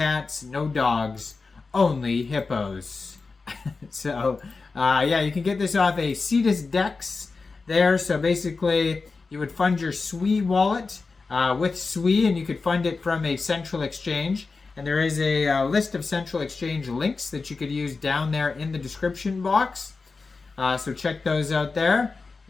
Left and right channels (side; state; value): right; quieter; 4.2 dB